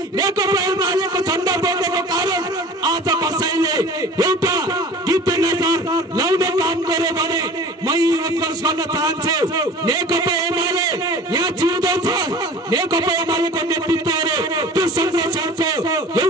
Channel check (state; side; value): normal; both; correlation 0.42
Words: नेकपा एमालेको झण्डा बोकेको कारण आज कसैले एउटा टिप्पे नजर लाउने काम गर्यो भने म उत्कर्ष गर्न चाहन्छु, नेकपा एमाले यहाँ जिउँदो छ। नेकपा एमालेको नेतृत्वले त्यो संरक्षणको